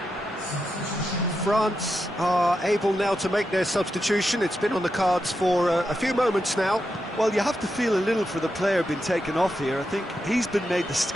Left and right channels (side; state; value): both; normal; correlation 0.87